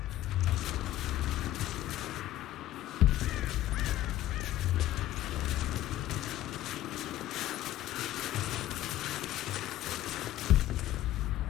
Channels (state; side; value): quieter; right; 14.2 dB